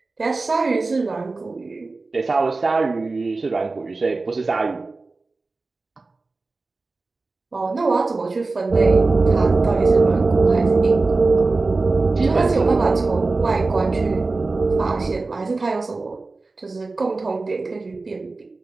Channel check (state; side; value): quieter; left; 3.6 dB